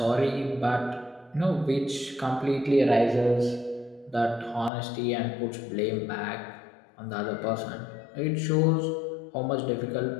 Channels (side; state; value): right; drops out; at 4.7 s